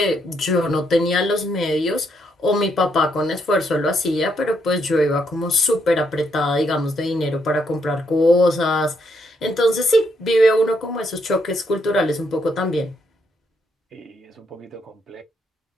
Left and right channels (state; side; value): normal; both; correlation 0.76